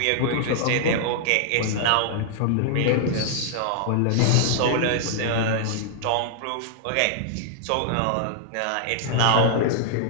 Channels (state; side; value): different; both; correlation -0.01